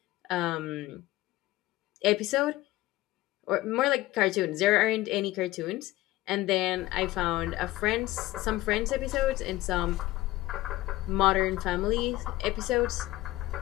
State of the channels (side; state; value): right; quieter; 17.3 dB